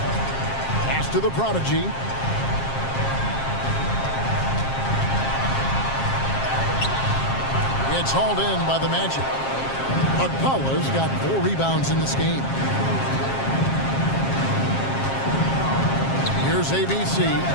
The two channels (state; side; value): late; right; 7.5 ms